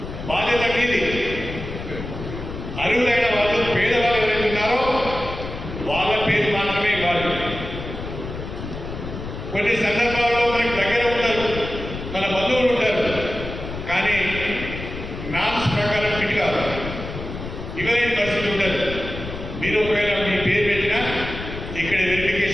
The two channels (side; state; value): left; noise; rumble, 9 dB below the sound